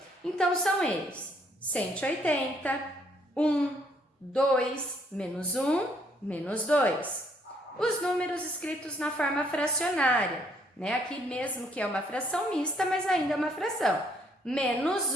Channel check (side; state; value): both; normal; correlation 0.67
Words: Então, são eles: 180, 1, 2, menos 1, menos 2. Os números escritos na forma fracionária, né? Aqui mesmo que é uma fração mista, mas ainda é uma fração. Menos